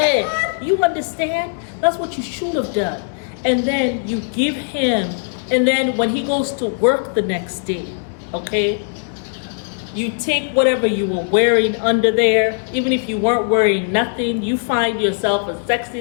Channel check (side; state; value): right; silent; digital silence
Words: You understand? That's what you should have done. And then you give him, and then when he goes to work the next day, okay? You take whatever you were wearing under there, even if you weren't wearing nothing, you find yourself a sexy